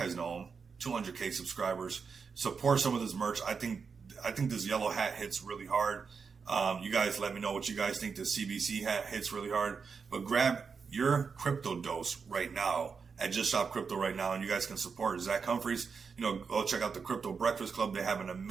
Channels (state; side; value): quieter; left; 5.6 dB